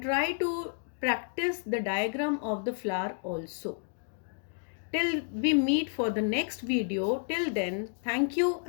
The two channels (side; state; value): right; silent; 57 dB below the other